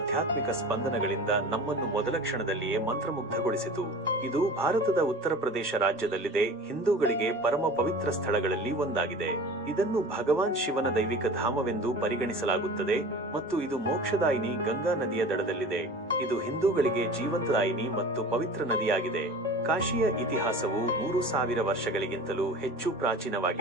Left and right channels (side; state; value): both; normal; correlation 0.38